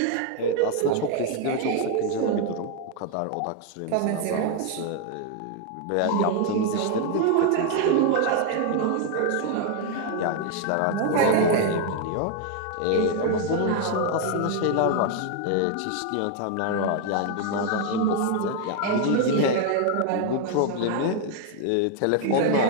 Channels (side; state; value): both; different; correlation 0.00